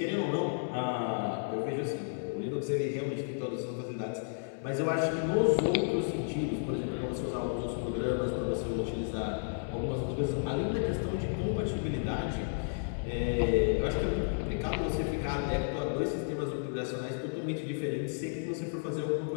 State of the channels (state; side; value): silent; right; digital silence